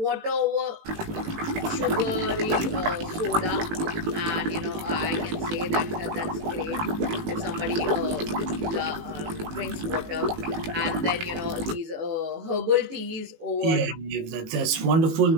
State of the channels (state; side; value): late; left; 18 ms